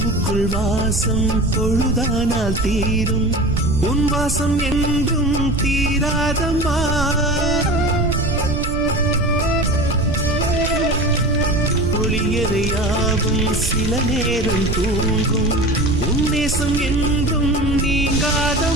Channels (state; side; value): noise; right; rumble, 3 dB below the sound